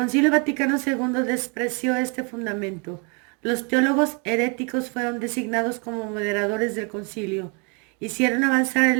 Vaticano II despreció este fundamento. Los teólogos heréticos fueron designados como moderadores del concilio. Hicieron avanzar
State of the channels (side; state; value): left; quieter; 34.6 dB